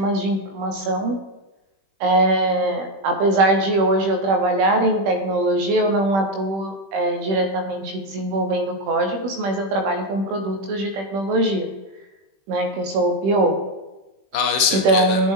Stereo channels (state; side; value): late; left; 21 ms